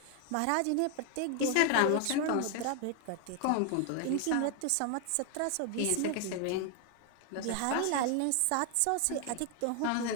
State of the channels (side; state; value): both; different; correlation 0.00